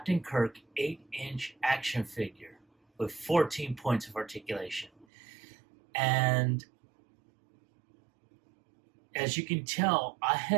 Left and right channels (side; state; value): left; drops out; at 5.1 s